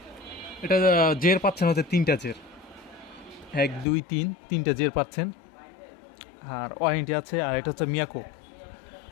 এটা জের পাচ্ছেন হচ্ছে 3টা জের, 1 2 3 3টে জের পাচ্ছেন। আর ওয়ারেন্টি আছে। আর এটা হচ্ছে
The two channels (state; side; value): drops out; right; at 3.9 s